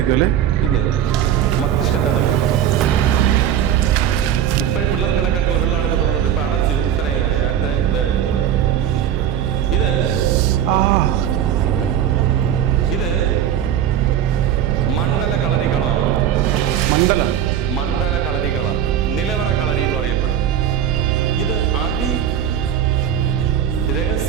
അല്ലേ? പിന്നെ മസ്തിഷ്കം തണുക്കും. ഇപ്പോഴും പിള്ളേർക്ക് കണക്കായിട്ടുള്ള വെള്ളമാണ് ഇപ്പൊ തുറന്നിട്ട് ഇപ്പൊ അടച്ചു. ഇത്രയായി അടുത്ത ഇതായിട്ടുള്ള ഇത് മണ്ഡല കളരികളമാണ്. മണ്ഡല കളരികളം, നിലവറ കളരി എന്ന് പറയപ്പെടും. ഇത്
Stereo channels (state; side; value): quieter; left; 10.0 dB